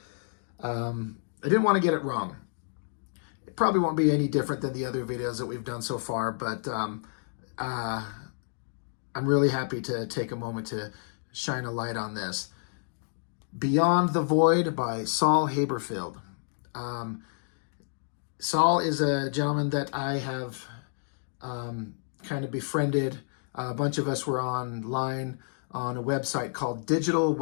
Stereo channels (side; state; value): right; silent; digital silence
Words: I didn't want to get it wrong. It probably won't be any different than the other videos that we've done so far, but I'm really happy to take a moment to shine a light on this. Beyond the Void by Saul Haberfield. Saul is a gentleman that I have kind of befriended. A bunch of us were online on a website called